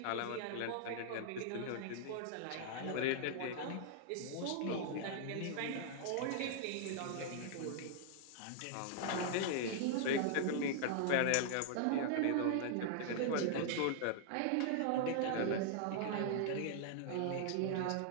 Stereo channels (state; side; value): different; both; correlation -0.01